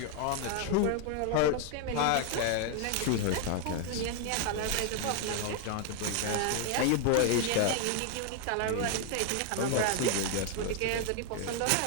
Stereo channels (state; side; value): different; both; correlation 0.00